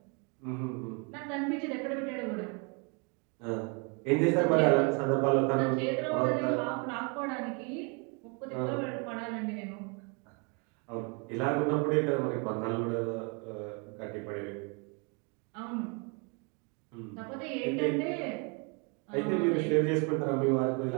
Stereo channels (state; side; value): quieter; left; 33.9 dB